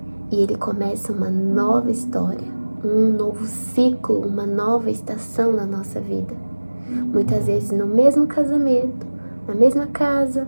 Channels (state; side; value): inverted; both; correlation -1.00